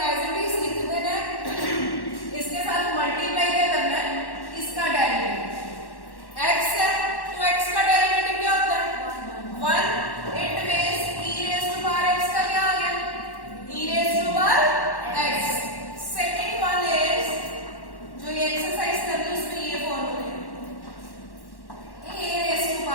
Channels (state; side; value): late; right; 1.1 ms